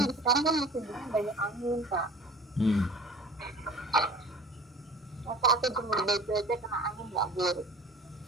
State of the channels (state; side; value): normal; both; correlation 0.42